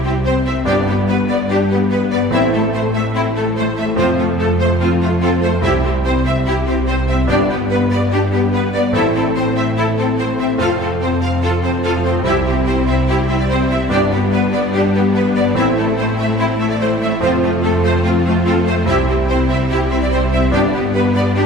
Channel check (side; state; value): both; normal; correlation 0.53